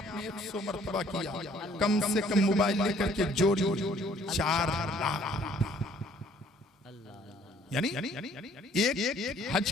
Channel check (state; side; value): normal; both; correlation 0.59